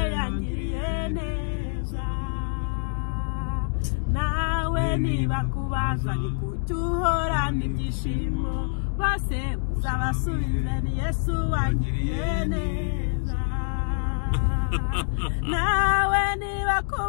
yangiriye neza nawe niba kubaza ni kuki uhorana ibyishimo bose uzabasubize ni Yesu wangiriye neza nawe niba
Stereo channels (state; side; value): silent; right; digital silence